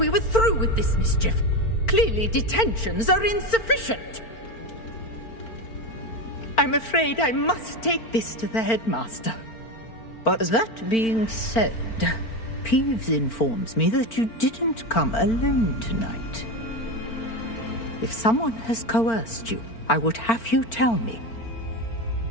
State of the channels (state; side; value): late; right; 4.4 ms